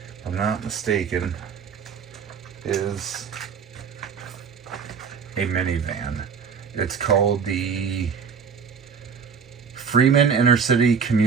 I'm not mistaken, is a minivan. It's called the Freeman Intercity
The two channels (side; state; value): left; quieter; 6.3 dB